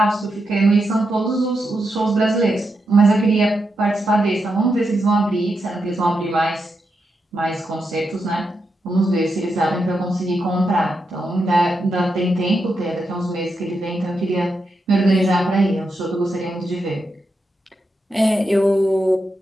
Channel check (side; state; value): both; normal; correlation 0.85